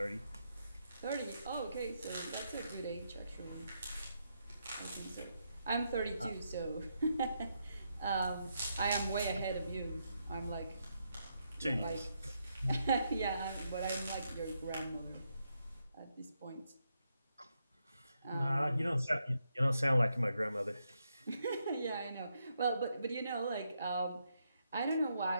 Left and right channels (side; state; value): both; inverted; correlation -0.80